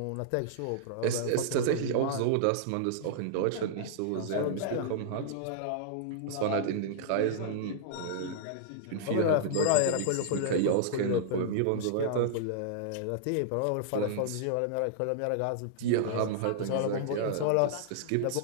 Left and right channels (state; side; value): different; both; correlation -0.02